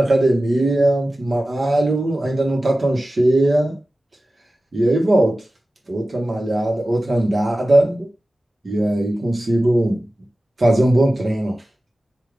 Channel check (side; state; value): both; normal; correlation 0.96